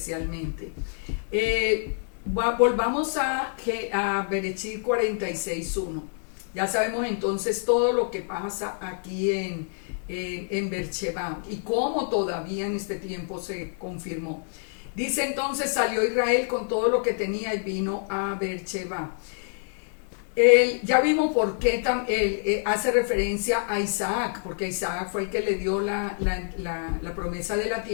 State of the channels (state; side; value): silent; right; 60 dB below the other